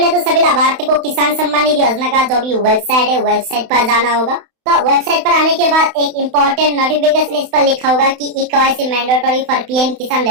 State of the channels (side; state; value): left; late; 31 ms